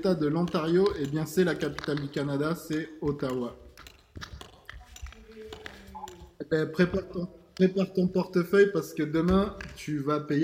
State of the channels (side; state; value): both; identical; correlation 1.00